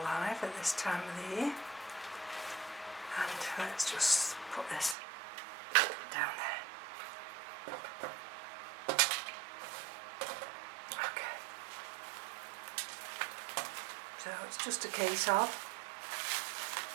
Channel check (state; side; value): drops out; left; at 5.0 s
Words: at this time of the year. And let's just put this down there. Okay. So it's just a case of